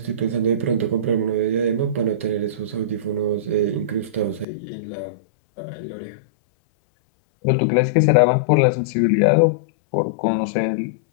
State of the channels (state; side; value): drops out; right; at 4.5 s